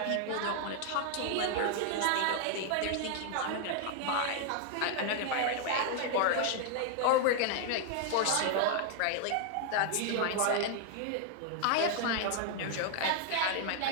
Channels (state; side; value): different; both; correlation 0.00